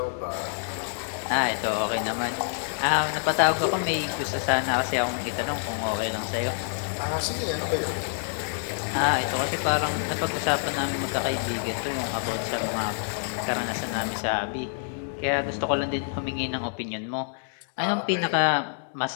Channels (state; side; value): silent; right; digital silence